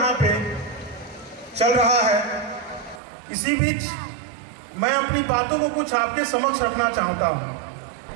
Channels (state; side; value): drops out; left; at 3.0 s